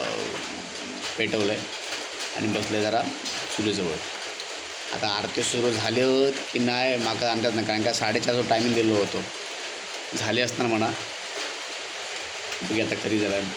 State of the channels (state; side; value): identical; both; correlation 1.00